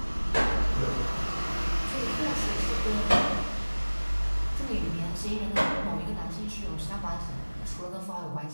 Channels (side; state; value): both; inverted; correlation -1.00